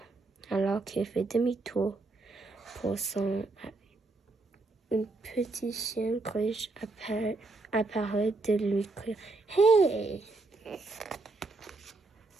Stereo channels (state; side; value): quieter; left; 3.4 dB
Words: alors qu'il fait demi-tour pour son habit. Un petit chien gauche apparaît de lui crier « Hey !»